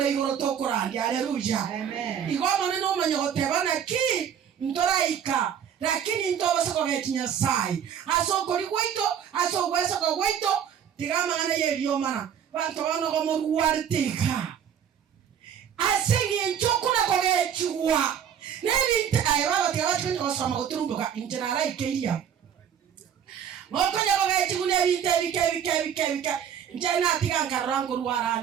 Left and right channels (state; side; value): quieter; left; 8.6 dB